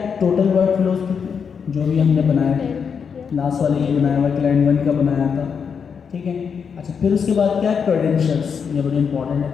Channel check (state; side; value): quieter; right; 6.5 dB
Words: टोटल वर्क फ्लो जो भी हमने बनाया, लास्ट वाले ये बनाया हुआ क्लाइंट 1 का बनाया था, ठीक है। अच्छा, फिर उसके बाद क्या है, क्रेडेंशियल्स, ये बड़ी इंपॉर्टेंट